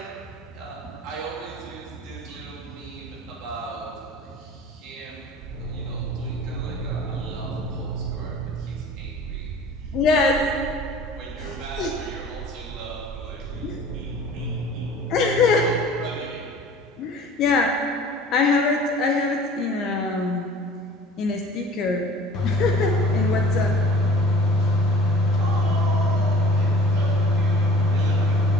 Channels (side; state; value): both; normal; correlation 0.46